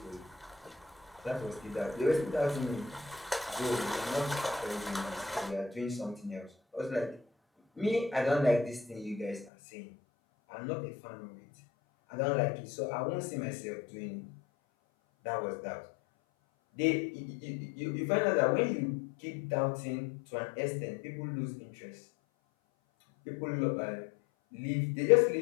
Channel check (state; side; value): drops out; right; at 9.5 s